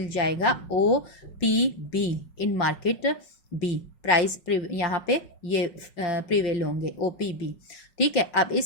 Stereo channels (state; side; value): late; right; 5.5 ms